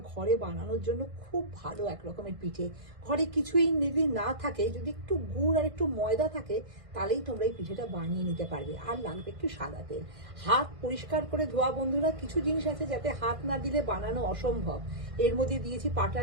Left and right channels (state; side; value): late; left; 1.6 ms